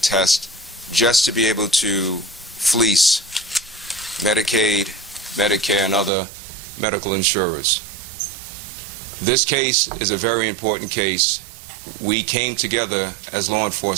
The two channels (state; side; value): drops out; left; at 6.1 s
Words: just to be able to fleece Medicaid, Medicare, and other medical insurers. This case is a very important case. We came together as law